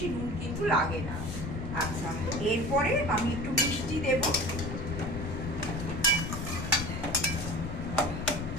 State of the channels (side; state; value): left; noise; rumble, 5 dB below the sound